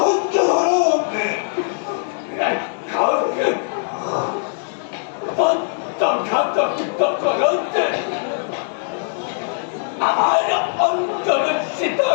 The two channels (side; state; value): right; silent; digital silence